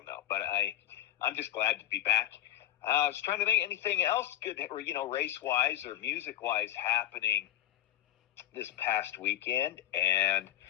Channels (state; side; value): quieter; right; 12.4 dB